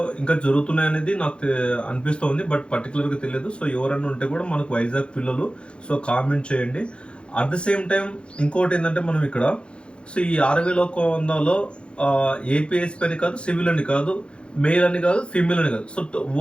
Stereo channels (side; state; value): right; late; 0.057 ms